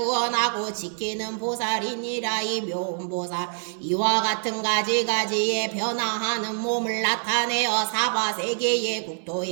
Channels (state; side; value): silent; left; 61 dB below the other